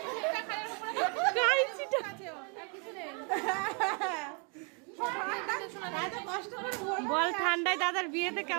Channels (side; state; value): left; quieter; 35.8 dB